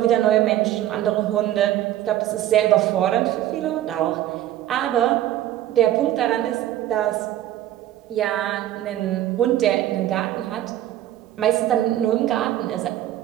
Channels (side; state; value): left; quieter; 13.0 dB